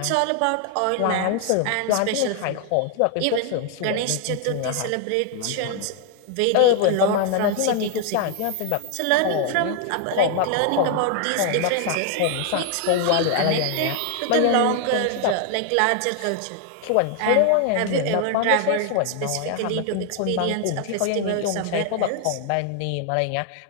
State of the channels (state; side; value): different; both; correlation 0.00